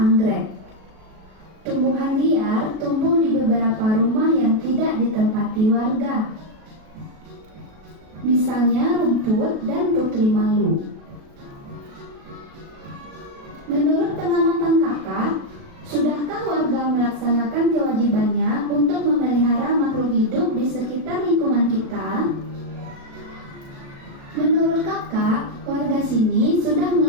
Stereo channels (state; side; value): late; left; 37 ms